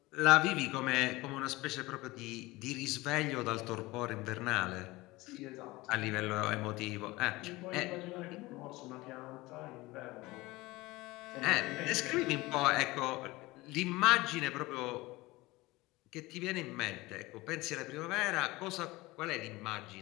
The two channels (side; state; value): right; quieter; 20.7 dB